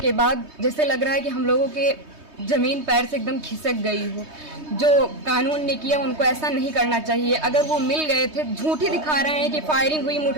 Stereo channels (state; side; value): late; left; 3.2 ms